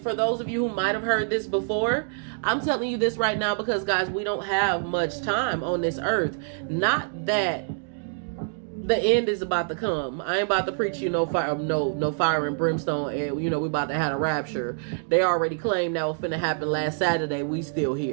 for those of you who might have heard this before, I'm telling you this right now because, guys, we don't have much time on this earth. Not that the end is about to come. I ain't about to preach you no fire, no fire and brimstone, and we about to have a rapture. They already claimed that was finna happen last Saturday. We still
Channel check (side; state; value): left; silent; digital silence